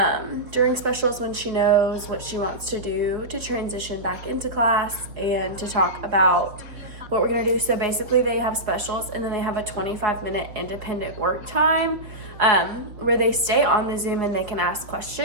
during specials when she knows what she wants to do to transition back into class and to talk about what we're gonna do. So basically they have specials, and then they have a 25-minute independent work time where they stay on the Zoom and they can ask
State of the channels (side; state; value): left; late; 4.5 ms